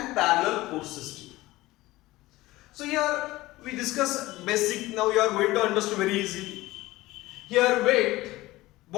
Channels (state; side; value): quieter; right; 18.5 dB